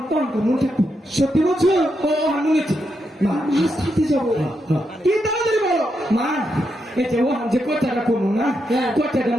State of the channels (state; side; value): normal; both; correlation 0.83